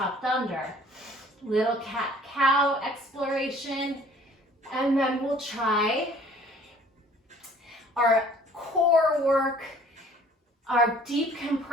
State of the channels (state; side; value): normal; both; correlation 0.53